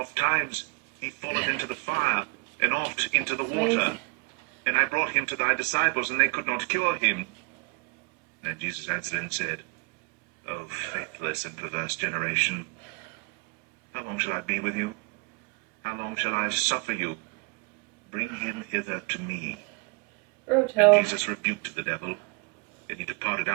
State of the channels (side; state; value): left; quieter; 29.8 dB